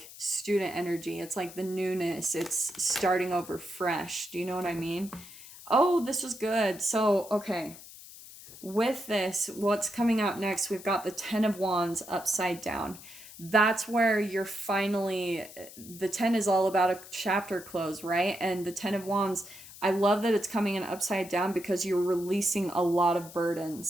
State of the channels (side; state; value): left; noise; hiss, 17 dB below the sound